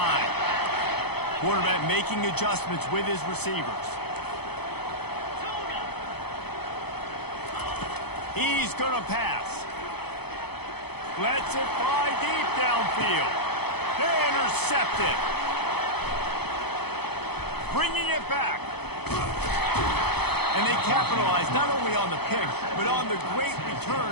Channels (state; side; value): late; right; 0.98 ms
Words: Quarterback making adjustments with his receivers. He's going to pass. Lets it fly deep downfield. They intercept it. Bringing it back. And they capitalize not only on the pick, but on the great